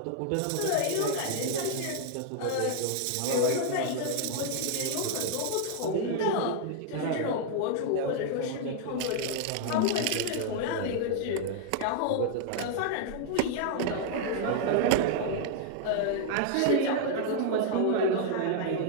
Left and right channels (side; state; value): both; different; correlation 0.00